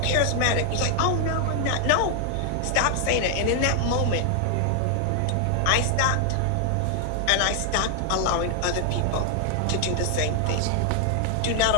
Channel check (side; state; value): both; different; correlation 0.00